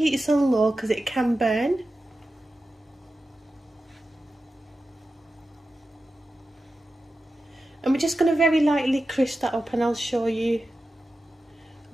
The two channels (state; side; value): normal; both; correlation 0.92